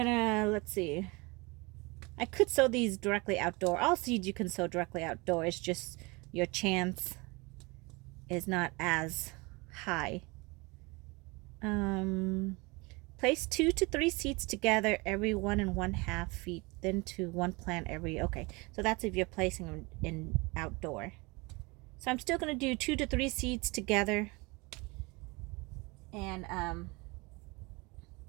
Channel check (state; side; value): quieter; left; 26.0 dB